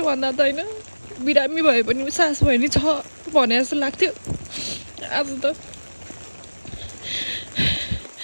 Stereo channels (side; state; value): both; inverted; correlation -1.00